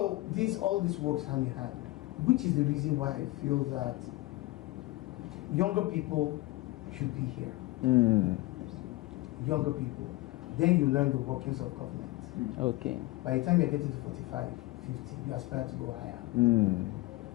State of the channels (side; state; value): right; quieter; 19.9 dB